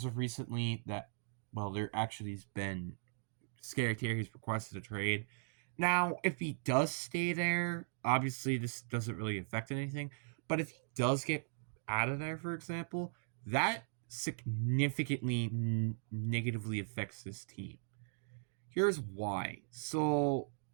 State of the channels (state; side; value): silent; left; digital silence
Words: of recently that, well, there actually has been Scary Terry's requested a trade. Now, if he does stay there, obviously this doesn't really affect anything. But if he does get out of there, for example, that significantly negatively affects this team. Here's why. So